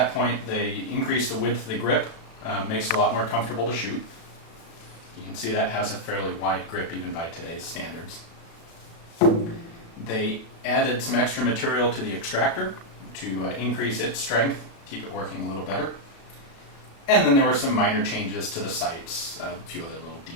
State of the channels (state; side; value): late; right; 36 ms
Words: point, they increased the width of the grip, makes it a lot more comfortable to shoot. You can see that has a fairly wide grip even by today's standards. They added some extra material to the extractor to increase its strength, keep it working a little better. And then there were some minor changes to the sights, a few other little